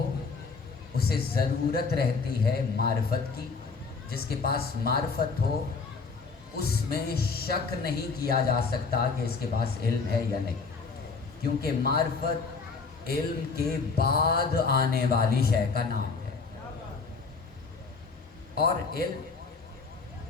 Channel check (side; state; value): right; quieter; 4.7 dB